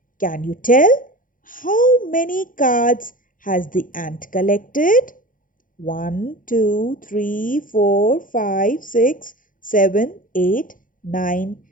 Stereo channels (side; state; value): right; late; 0.39 ms